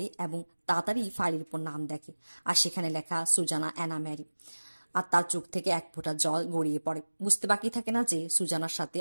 এবং তাড়াতাড়ি ফাইলের উপর নাম দেখে, আর সেখানে লেখা সুজানা অ্যানা ম্যারি। আর তার চোখ থেকে এক ফোঁটা জল গড়িয়ে পড়ে। বুঝতে বাকি থাকে না যে সুজানার সাথে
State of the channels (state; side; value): inverted; both; correlation -1.00